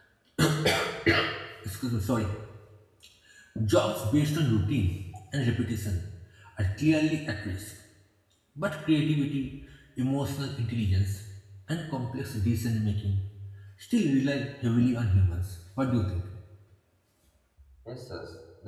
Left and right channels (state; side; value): identical; both; correlation 1.00